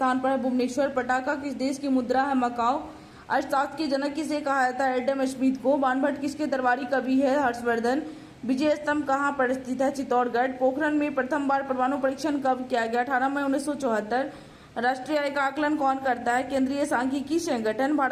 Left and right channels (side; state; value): both; identical; correlation 1.00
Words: पर है? भुवनेश्वर। पटाखा किस देश की मुद्रा है? मकाओ। अर्थशास्त्र के जनक किसे कहा जाता है? एडम स्मिथ को। बाणभट्ट किसके दरबारी कवि है? हर्षवर्धन। विजय स्तंभ कहाँ पर स्थित है? चित्तौड़गढ़। पोखरण में प्रथम बार परमाणु परीक्षण कब किया गया? 18 मई 1974। राष्ट्रीय आय का आकलन कौन करता है? केंद्रीय सांख्यिकी संगठन।